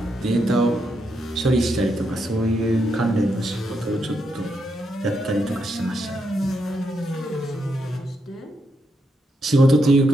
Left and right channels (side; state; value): both; normal; correlation 0.81